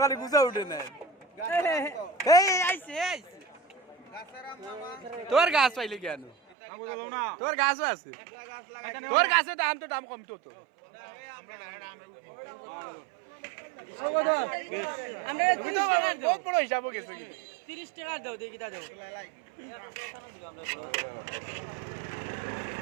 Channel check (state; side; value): drops out; left; at 6.4 s